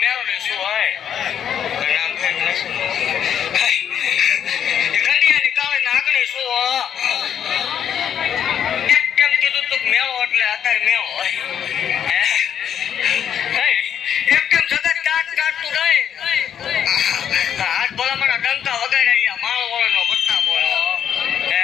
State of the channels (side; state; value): right; quieter; 8.9 dB